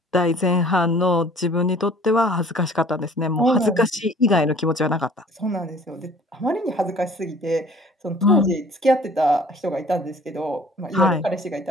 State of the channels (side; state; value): both; normal; correlation 0.52